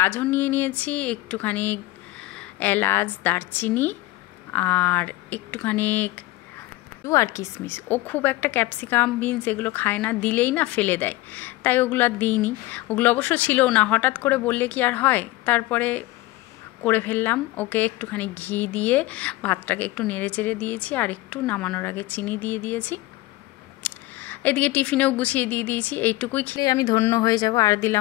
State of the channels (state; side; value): quieter; right; 18.4 dB